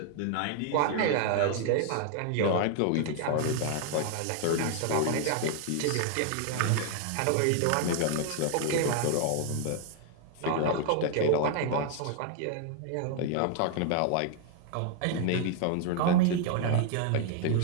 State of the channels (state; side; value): different; both; correlation 0.00